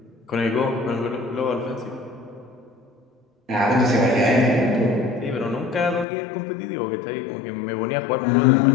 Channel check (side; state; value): right; drops out; at 6.1 s